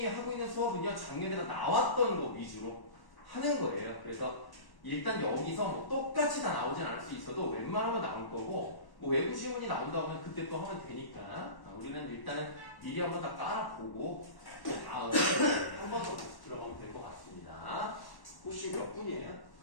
하고 있는 수업은요 작년에 나왔던 거 위주로 하는 거예요. 그래서 일단 여기서 뭐 똑같이 다 나오진 않을 수 있어도 웬만하면 나올 거고 뭐 외부 지문이 나온다고 하면 그때 또 하면 되니까 우리는 일단은 미리 한번 다 깔아보고 다음에 한 번 더 들어가면 될 것 같습니다. 혹시 몇 분이에요?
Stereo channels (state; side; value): late; right; 1.1 ms